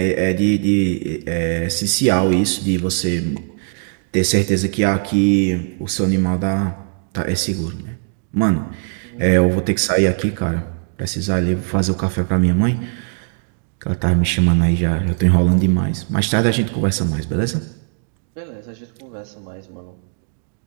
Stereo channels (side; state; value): left; silent; digital silence